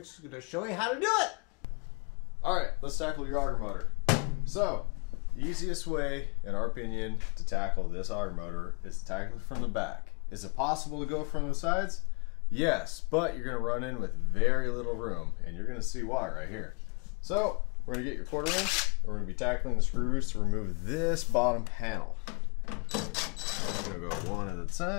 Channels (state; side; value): quieter; right; 35.0 dB